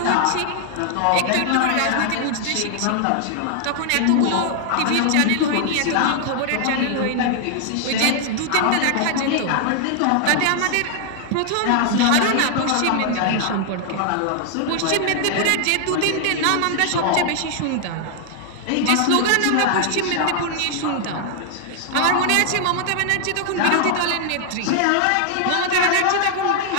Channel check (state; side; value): different; both; correlation 0.00